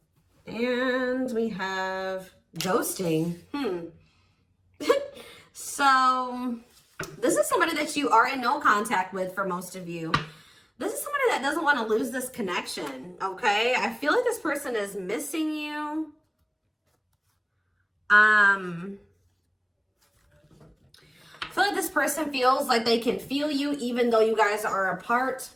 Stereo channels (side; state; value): both; identical; correlation 1.00